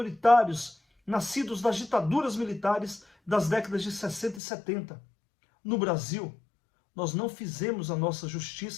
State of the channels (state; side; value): drops out; right; at 4.4 s